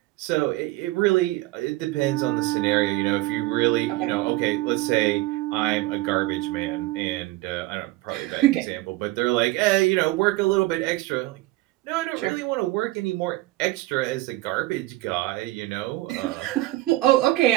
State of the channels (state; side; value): quieter; left; 18.5 dB